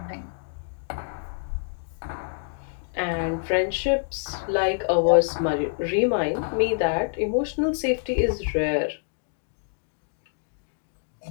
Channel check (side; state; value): right; silent; digital silence